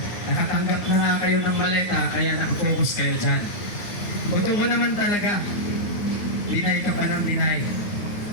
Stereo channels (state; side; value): late; right; 9.8 ms